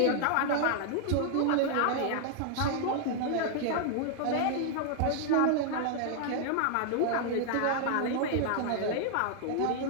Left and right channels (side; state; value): both; different; correlation 0.00